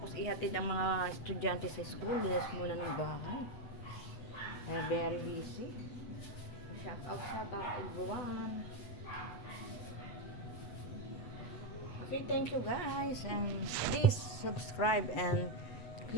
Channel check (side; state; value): right; late; 8.0 ms